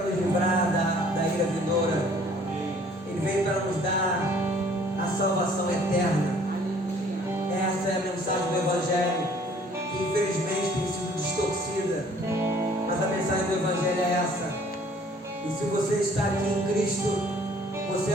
nos livrar da ira vindoura. Ele veio para nos dar a salvação eterna. Essa é a mensagem do Evangelho, que infelizmente tem sido distorcida. Mas a mensagem do Evangelho é essa. E se você está aqui em Cristo, você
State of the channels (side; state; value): both; normal; correlation 0.56